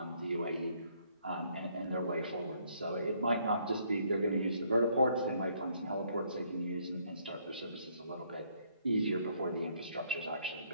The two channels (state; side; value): inverted; both; correlation -0.68